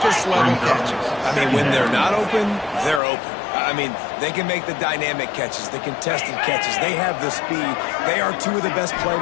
catches. I mean, when they're not open, they're open. I mean, they can make the dynamic catches, the contested catches. They have the speed. They are two of the best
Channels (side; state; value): right; drops out; at 3.0 s